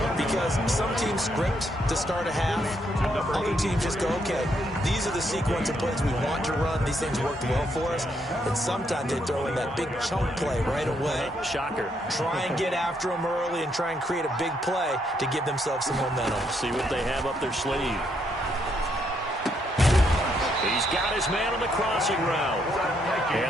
because some teams script to start a half. Other teams just go, okay, these are the sequence of plays we want to run. These things worked well for us. And sometimes they throw in that big chunk play right away. Shocker. Try and get after them early and try and create a big play to give themselves some momentum. See what they have up their sleeve. He's got his man on the crossing route.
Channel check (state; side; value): normal; both; correlation 0.75